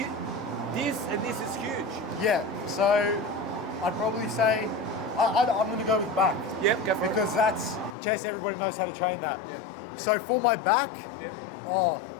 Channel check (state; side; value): drops out; right; at 8.0 s